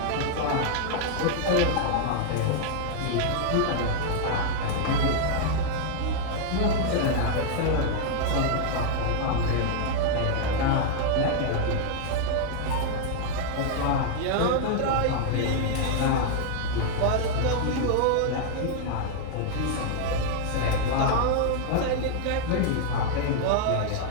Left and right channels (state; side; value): different; both; correlation 0.00